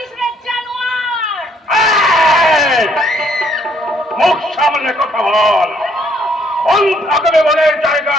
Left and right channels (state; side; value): normal; both; correlation 0.66